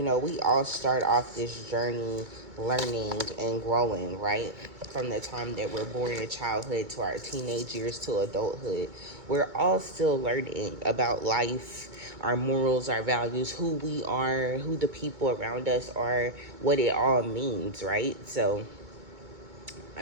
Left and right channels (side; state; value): left; late; 2.2 ms